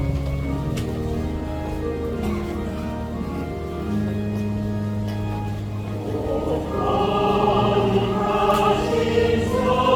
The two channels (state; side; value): identical; both; correlation 1.00